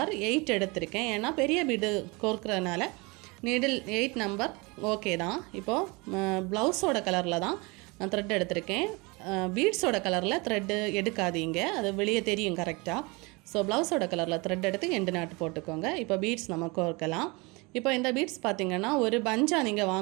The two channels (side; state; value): left; quieter; 26.8 dB